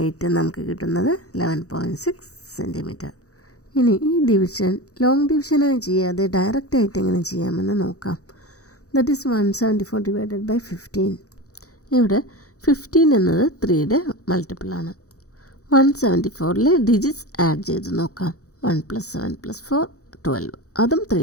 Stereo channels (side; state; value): right; late; 0.65 ms